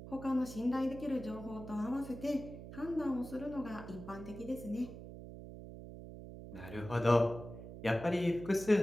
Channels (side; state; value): right; noise; hum, 12 dB below the sound